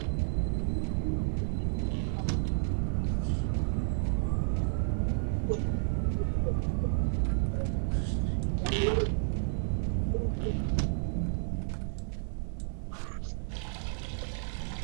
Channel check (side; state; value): left; silent; digital silence